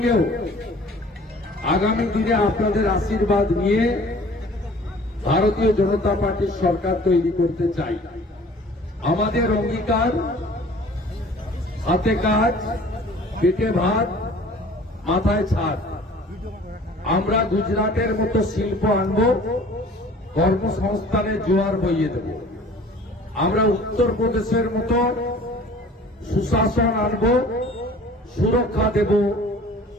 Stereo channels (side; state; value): both; normal; correlation 0.49